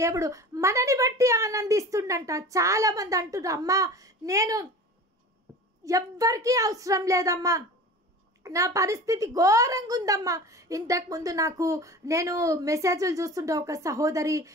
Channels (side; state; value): both; normal; correlation 0.36